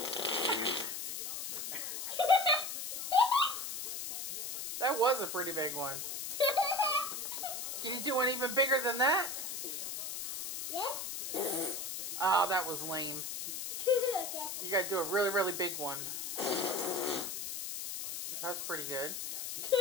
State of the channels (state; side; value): noise; left; hiss, 5 dB below the sound